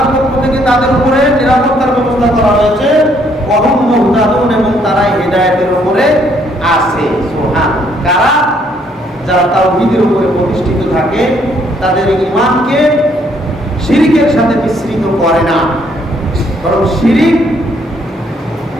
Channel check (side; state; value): both; normal; correlation 0.68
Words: পক্ষ থেকে তাদের উপরে নিরাপত্তার ব্যবস্থা করা হয়েছে। ওয়াহুম মুহতাদুন, এবং তারা হিদায়াতের উপরে আছে। সুবহান। কারা? যারা তাওহীদের উপরে প্রতিষ্ঠিত থাকে, তাদের ঈমানকে শিরিকের সাথে মিশ্রিত করে না, বরং শিরিক